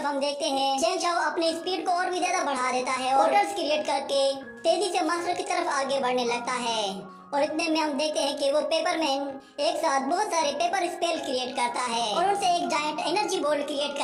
हम देखते हैं चेंग शाओ अपनी स्पीड को और भी ज्यादा बढ़ा देता है और पोर्टल्स क्रिएट करके तेजी से मास्टर की तरफ आगे बढ़ने लगता है। और इतने में हम देखते हैं कि वो पेपरमैन एक साथ बहुत सारे पेपर स्पेल क्रिएट करता है और उनसे एक जायंट एनर्जी बॉल क्रिएट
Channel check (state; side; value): identical; both; correlation 1.00